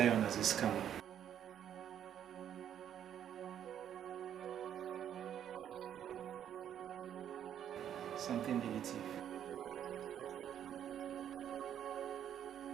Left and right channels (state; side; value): quieter; left; 9.7 dB